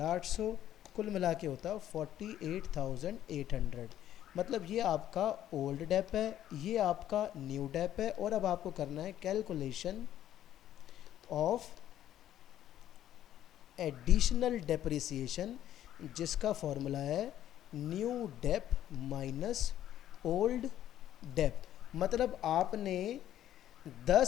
कुल मिला के होता 48,800। मतलब ये आपका ओल्ड डेप है, ये आपका न्यू डेप है, और अब आपको करना है कैलकुलेशन ऑफ एडिशनल डेप्रिसिएशन, जिसका फॉर्मूला है new dep minus old dep. मतलब आपने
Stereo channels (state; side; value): quieter; right; 11.8 dB